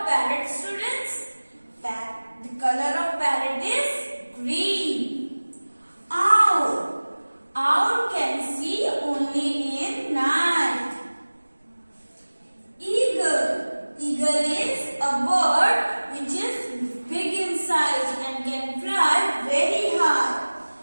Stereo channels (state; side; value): inverted; both; correlation -1.00